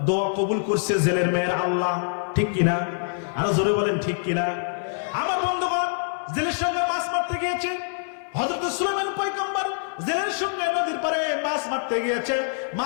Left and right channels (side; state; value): right; silent; digital silence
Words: দোয়া কবুল করছে জেলের মেয়ের আল্লাহ, ঠিক কিনা? আরো জোরে বলেন ঠিক কিনা? আমার বন্ধুগণ, জেলের সঙ্গে মাছ মারতে গিয়েছে। হযরত সুলাইমান পয়গম্বর জেলের সঙ্গে নদীর পারে মাছ মারতে গিয়েছে।